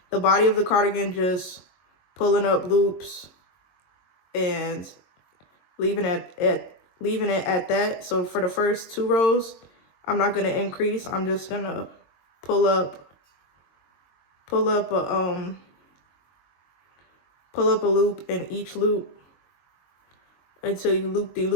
cardigan, just pulling up loops and leaving it at that. So for the first 2 rows, I'm not gonna increase. I'm just gonna pull up a loop in each loop until you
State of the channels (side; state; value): right; late; 22 ms